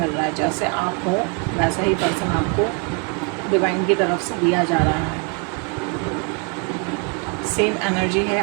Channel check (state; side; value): quieter; left; 34.9 dB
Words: रहा है। जैसे आप हो वैसा ही पर्सन आपको डिवाइन की तरफ से दिया जा रहा है। सेम एनर्जी है